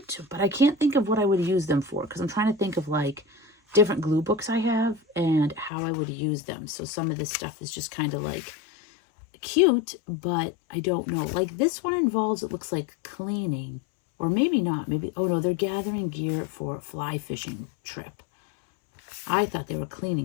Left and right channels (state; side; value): drops out; right; at 5.7 s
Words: but I can't think of what I would use them for because I'm trying to think of like different glue books I have and how I would use them. So some of this stuff is just kind of like cute, but I don't know. Like this one involves, it looks like cleaning, or maybe not. Maybe, oh no, they're gathering gear for a fly fishing trip. I thought they were